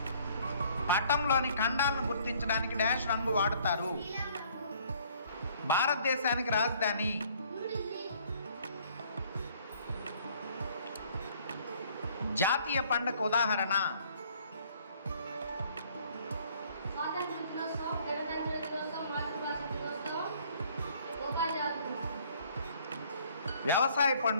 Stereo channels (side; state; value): both; inverted; correlation -0.59